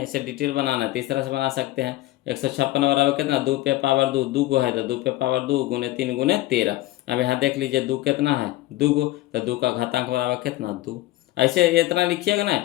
ऐसे डिटेल बनाना है तो इस तरह से बना सकते हैं। 156 बराबर कितना, 2 पे पावर 2, 2 गो है तो 2 पे पावर 2 गुने 3 गुने 13। अब यहाँ देख लीजिए 2 कितना है, 2 गो, तो 2 का घातांक बराबर कितना, 2। ऐसे इतना लिखिएगा ना,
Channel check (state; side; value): quieter; right; 16.9 dB